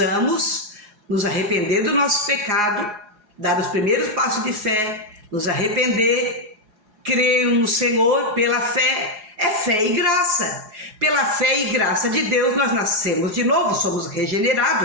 nos arrepender do nosso pecado, dar os primeiros passos de fé, nos arrepender, crer no Senhor pela fé. É fé e graça. Pela fé e graça de Deus nós nascemos de novo, somos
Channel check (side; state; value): left; late; 4.8 ms